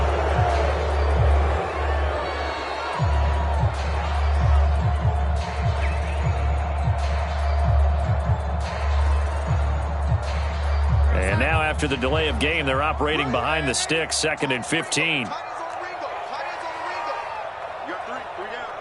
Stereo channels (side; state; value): both; identical; correlation 1.00